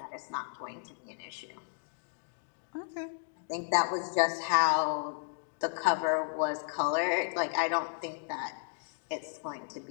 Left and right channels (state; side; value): silent; right; digital silence